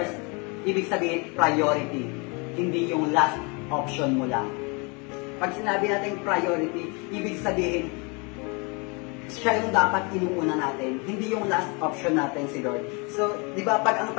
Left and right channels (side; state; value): right; quieter; 31.1 dB